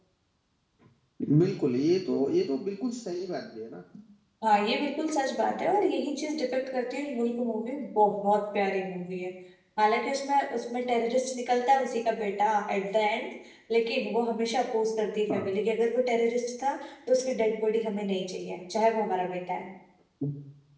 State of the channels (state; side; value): identical; both; correlation 1.00